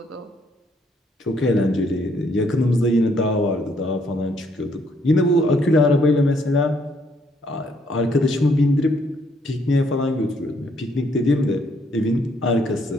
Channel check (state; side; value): normal; both; correlation 0.69